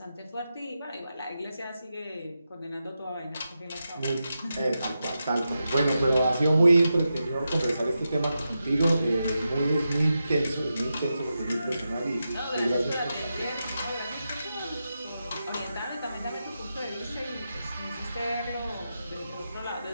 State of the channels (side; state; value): both; inverted; correlation -0.89